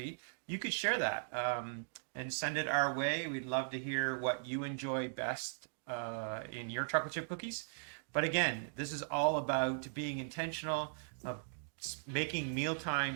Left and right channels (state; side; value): silent; left; digital silence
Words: you could share that and send it our way. We'd love to hear what you enjoy best in your chocolate chip cookies. But again, this is all about being intentional, of making meal